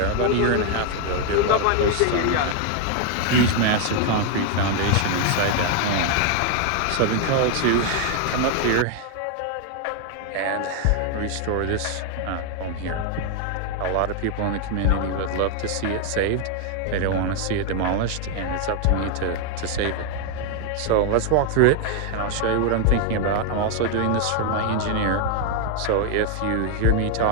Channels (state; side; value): different; both; correlation 0.00